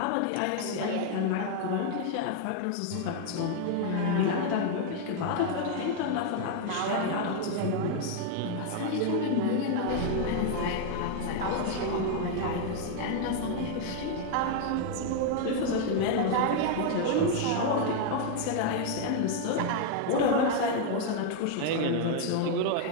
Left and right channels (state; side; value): different; both; correlation 0.00